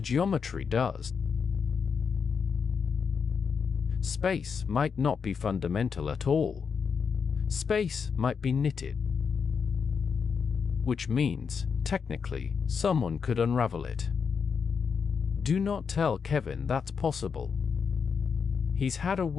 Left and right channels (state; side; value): quieter; right; 6.1 dB